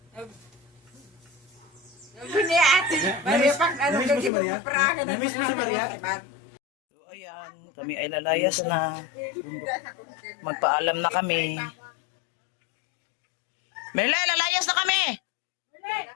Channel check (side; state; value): right; drops out; at 4.3 s